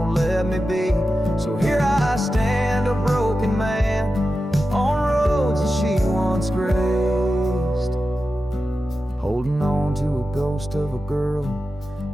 let me be. So here I stand, a broken man, on roads that she once graced, holding on to a ghost of a girl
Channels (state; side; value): normal; both; correlation 0.92